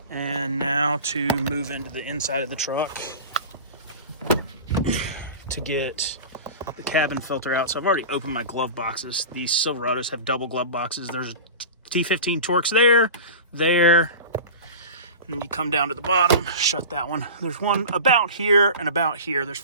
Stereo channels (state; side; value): inverted; both; correlation -0.33